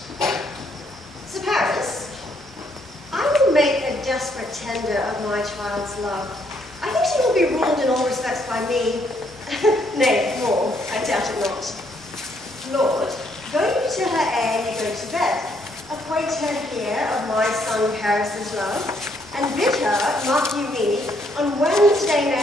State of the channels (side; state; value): both; normal; correlation 0.71